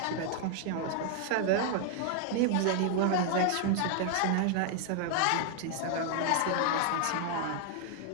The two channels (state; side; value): different; both; correlation 0.00